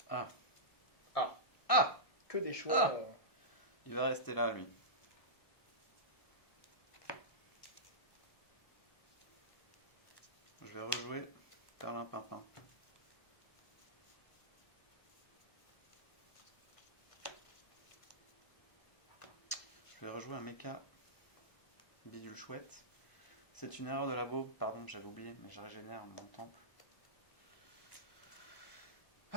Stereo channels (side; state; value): right; late; 1.2 ms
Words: Ah. Ah. Ah. Que des choix. Ah. Il va rester là, lui. Je vais rejouer Perlimpinpin. Je vais rejouer un mecha bidule chouette. C'est une erreur de labo, pardon, j'avais oublié, mais je régénère mon temple.